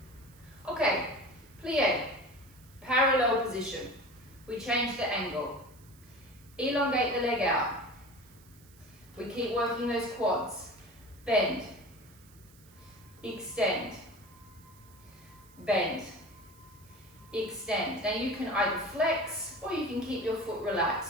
Okay, plie, parallel position. We change the angle. Elongate the leg out. We keep working those quads. Bend, extend, bend, extend. Now you can either flex or you can keep your foot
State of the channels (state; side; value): noise; right; hiss, 26 dB below the sound